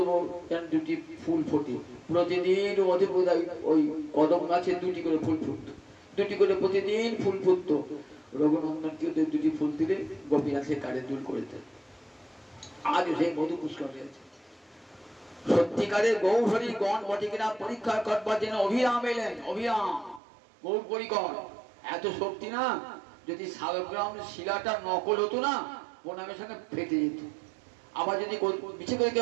দুটি ফুল ফোটে প্রতিদিন। ওই কদম গাছে দুটি করে ফুল ফুটতো, দুটি করে প্রতিদিন ফুল ফুটতো। রঘুনন্দনকে দুটি ফুল দিলে গোপীনাথের কানের দুল করে দেয়। আজও সেই মধু পুষ্কর রয়েছে। সত্যিকারের গৌরহরি গণ বটে কিনা পরীক্ষা করবার জন্য অভিরাম এলেন, অভিরাম গৌর পরিকর। এত শক্তি না, যদি শালগ্রাম শিলাটা নকল হতো না, প্রণামের সঙ্গে ফেটে যেত। আবার যদি মিছে করে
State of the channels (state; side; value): drops out; left; at 20.2 s